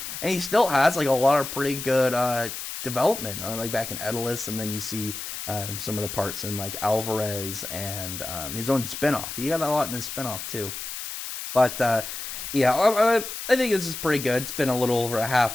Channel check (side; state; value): left; noise; hiss, 7 dB below the sound